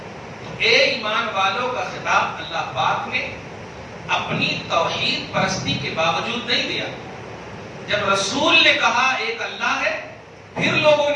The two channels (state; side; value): identical; both; correlation 1.00